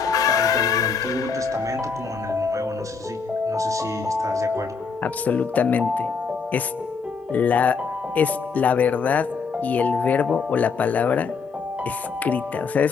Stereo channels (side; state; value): right; quieter; 5.3 dB